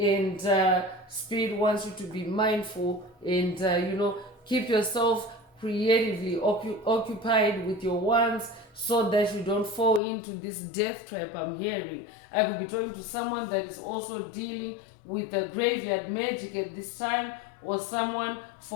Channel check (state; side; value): drops out; right; at 10.0 s